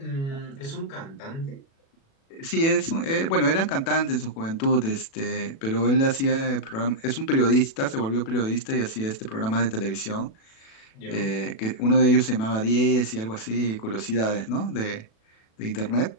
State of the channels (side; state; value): right; late; 36 ms